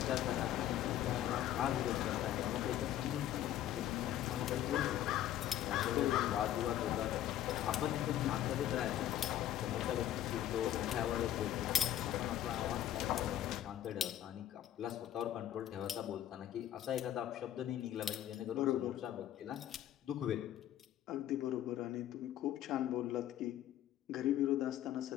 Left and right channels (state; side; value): quieter; right; 12.0 dB